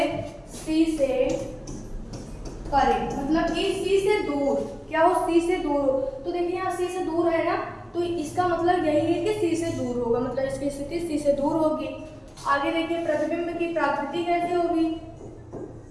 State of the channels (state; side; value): identical; both; correlation 1.00